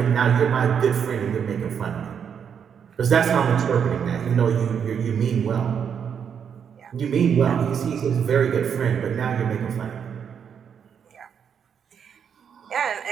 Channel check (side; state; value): left; quieter; 7.6 dB